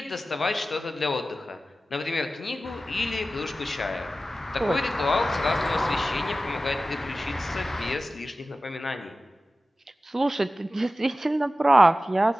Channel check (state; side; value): normal; both; correlation 0.95